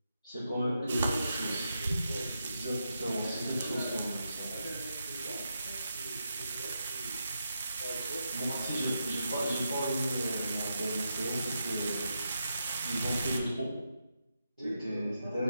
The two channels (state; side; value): inverted; both; correlation -0.84